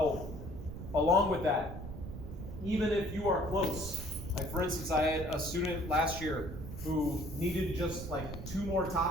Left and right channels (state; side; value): noise; right; rumble, 9 dB below the sound